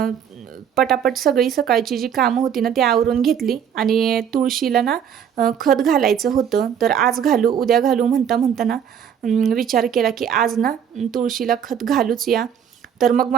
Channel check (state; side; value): quieter; left; 8.4 dB